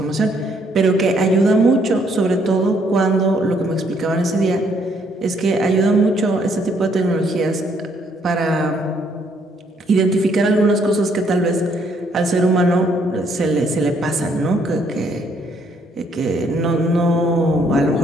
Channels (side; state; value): both; normal; correlation 0.69